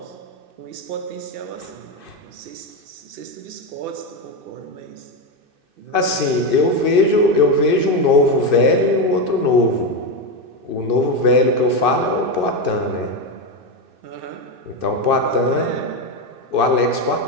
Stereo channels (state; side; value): late; left; 2.6 ms